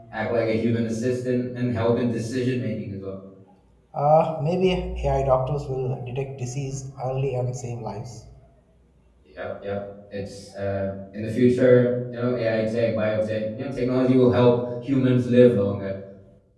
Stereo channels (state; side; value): identical; both; correlation 1.00